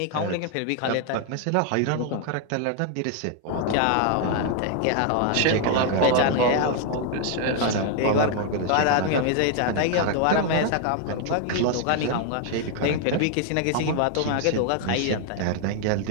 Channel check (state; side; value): different; both; correlation 0.00